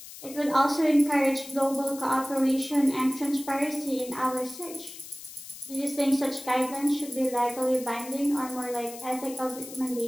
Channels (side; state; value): left; noise; hiss, 14 dB below the sound